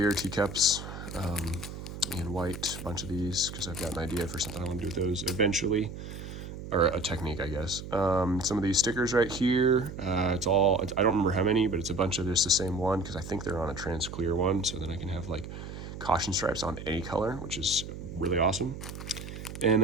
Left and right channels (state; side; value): noise; right; hum, 10 dB below the sound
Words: teacups, in white, a bunch of these, because I've got an idea for something I want to do with those eventually, or a technique, I guess. Some of these stickers right here, I don't remember how many, but it's a bunch of just the same one, because I think they're on a trans clear one, so then I can have like caution stripes on any color, which is really awesome. And